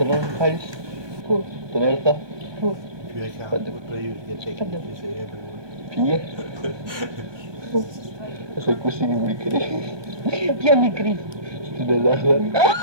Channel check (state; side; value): late; left; 1.2 ms